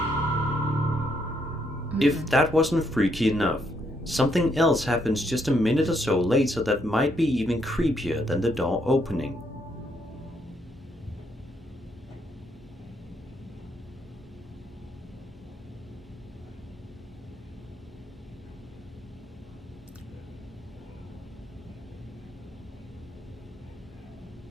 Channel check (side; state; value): both; normal; correlation 0.74